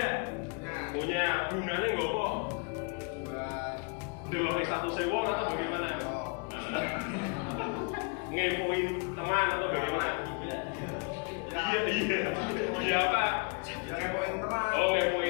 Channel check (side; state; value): right; quieter; 34.0 dB